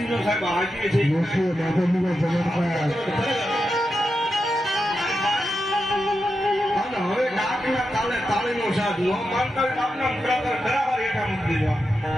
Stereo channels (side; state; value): both; normal; correlation 0.88